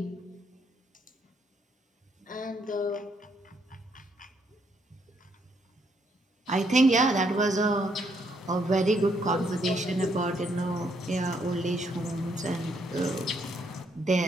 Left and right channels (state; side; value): normal; both; correlation 0.73